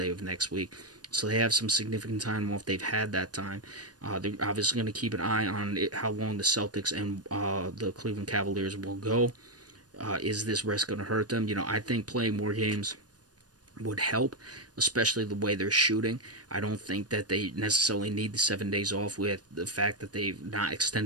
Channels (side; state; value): left; late; 0.69 ms